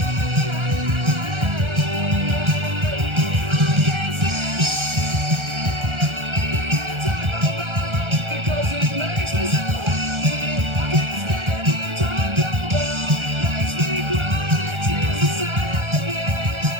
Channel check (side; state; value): left; late; 1.3 ms